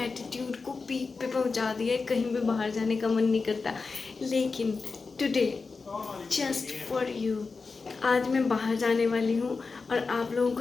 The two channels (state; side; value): quieter; right; 4.4 dB